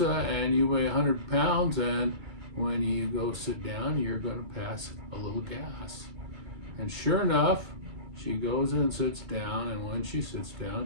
and you weigh 100 pounds, and when you go sit down, you're going to pass a little gas." And sure enough, she goes and sits down, and when she sits down,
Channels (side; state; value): left; late; 2.4 ms